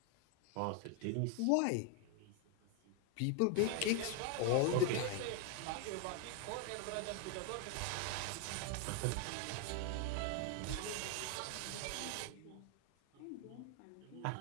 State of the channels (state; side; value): different; both; correlation 0.00